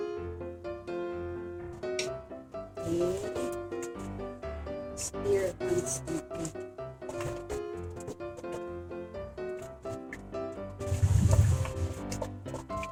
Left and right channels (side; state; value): both; identical; correlation 1.00